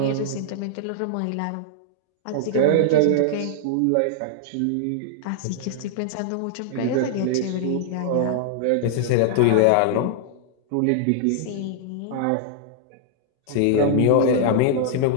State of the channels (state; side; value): different; both; correlation -0.01